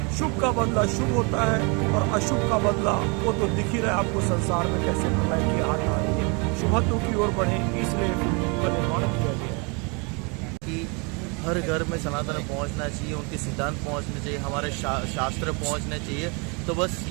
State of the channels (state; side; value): quieter; left; 32.0 dB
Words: शुभ का बदला शुभ होता है और अशुभ का बदला वो तो दिख ही रहा है आपको संसार में कैसे प्रलय की आठ आ रही है। शुभत्व की ओर बढ़े, इसलिए फिल्म का निर्माण किया गया है कि हर घर में सनातन पहुंचना चाहिए, उनके सिद्धांत पहुंचने चाहिए, हमारे शास्त्र पहुंचने चाहिए। तो बस